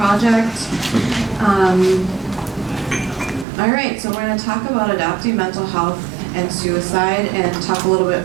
All right, so we're going to talk about adoptee mental health and suicide, and talk a little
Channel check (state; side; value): drops out; left; at 3.5 s